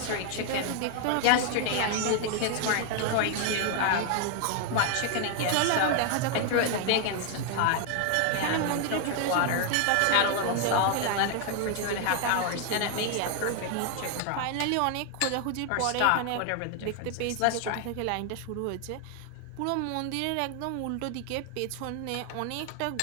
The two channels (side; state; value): both; different; correlation 0.00